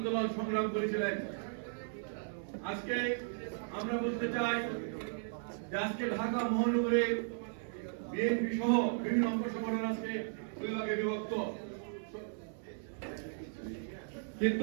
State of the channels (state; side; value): silent; left; 54 dB below the other